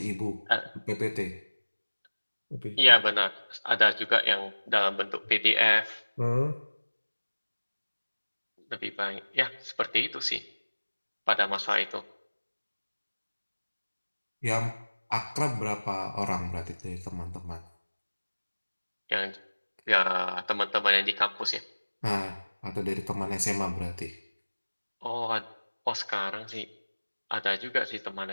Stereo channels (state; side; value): inverted; both; correlation -1.00